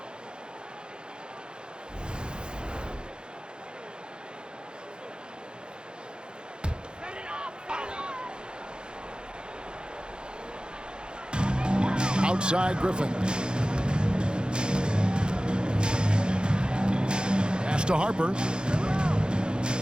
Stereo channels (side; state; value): left; late; 0.049 ms